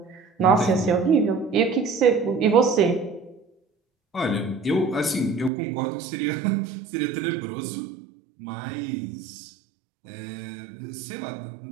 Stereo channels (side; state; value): left; drops out; at 5.5 s